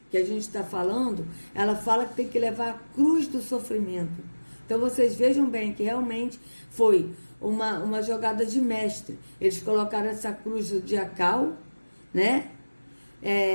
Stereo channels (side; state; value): both; inverted; correlation -1.00